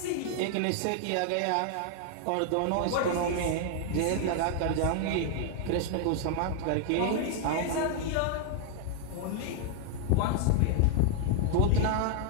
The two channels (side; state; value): both; different; correlation 0.00